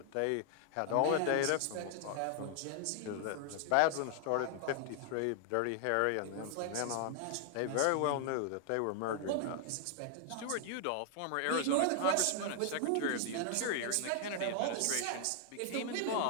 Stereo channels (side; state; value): both; different; correlation 0.00